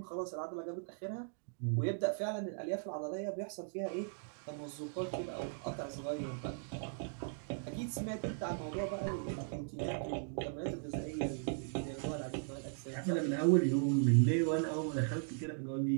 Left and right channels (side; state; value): left; silent; digital silence